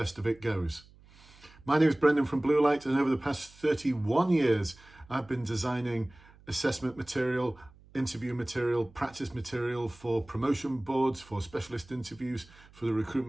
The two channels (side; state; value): right; noise; hum, 25 dB below the sound